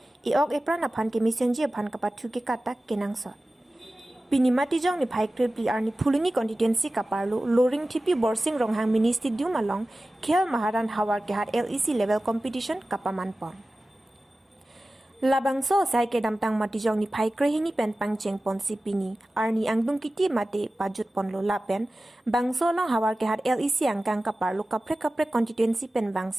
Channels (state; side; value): normal; both; correlation 0.96